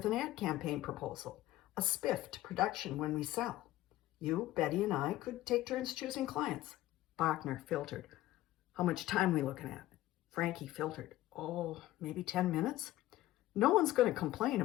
an ad campaign proposal, a spiff to production when we sell. You, Betty, and I could take turns choosing clients. Bachner, filtered. How much time we looking at? Frankie, filtered. Oh, maybe 10 minutes? No one's going to complain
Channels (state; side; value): quieter; right; 15.5 dB